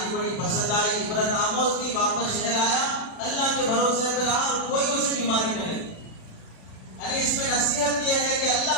بڑی پسند آئی، عبرت آموز تھی. واپس شہر آیا، اللہ کے بھروسے پر رہا اور کوئی اسے بیماری نہیں لگی. یعنی اس میں نصیحت یہ ہے کہ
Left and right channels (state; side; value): late; right; 36 ms